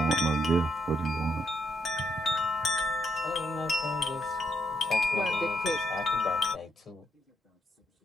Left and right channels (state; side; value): normal; both; correlation 0.76